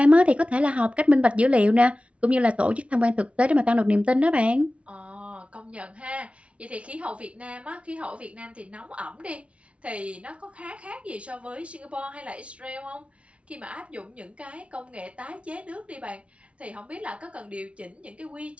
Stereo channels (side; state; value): left; late; 0.062 ms